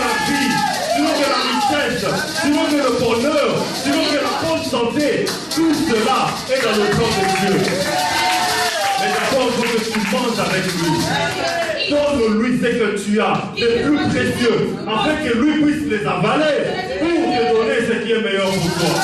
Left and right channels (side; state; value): both; identical; correlation 1.00